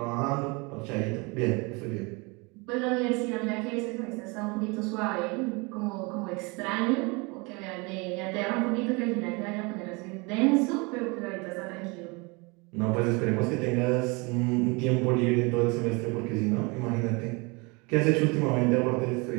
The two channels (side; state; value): left; quieter; 28.2 dB